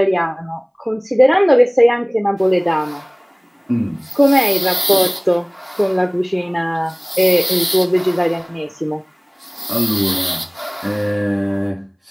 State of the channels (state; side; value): identical; both; correlation 1.00